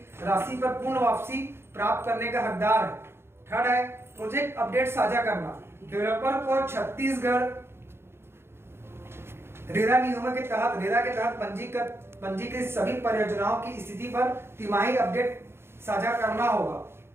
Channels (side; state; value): left; late; 0.12 ms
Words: राशि पर पूर्ण वापसी प्राप्त करने का हकदार है। थर्ड है प्रोजेक्ट अपडेट साझा करना। डेवलपर को छत्तीसगढ़ रेरा नियमों के तहत, रेरा के तहत पंजीकृत सभी परियोजनाओं की स्थिति पर तिमाही अपडेट साझा करना होगा।